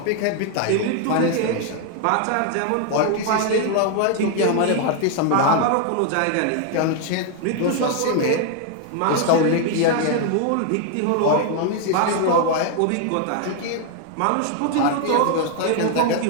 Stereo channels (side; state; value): both; different; correlation 0.00